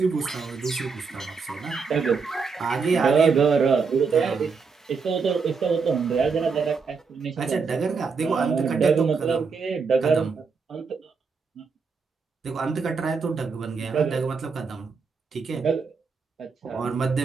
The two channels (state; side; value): quieter; left; 5.1 dB